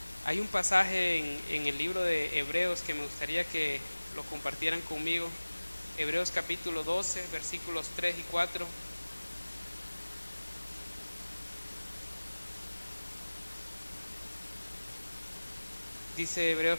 Hay un pasaje en el libro de Hebreos que me gustaría que lo compartieran conmigo. Hebreos capítulo 12, versículos 3 y 4. Dice Hebreos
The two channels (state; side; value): inverted; both; correlation -1.00